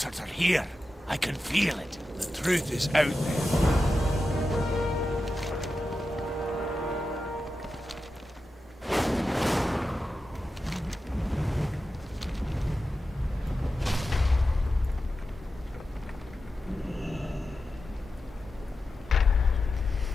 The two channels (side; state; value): both; normal; correlation 0.91